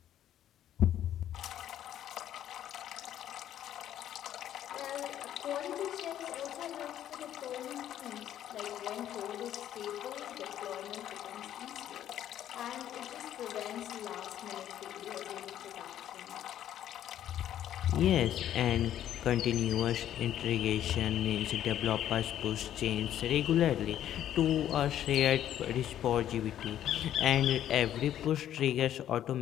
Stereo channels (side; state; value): right; quieter; 11.3 dB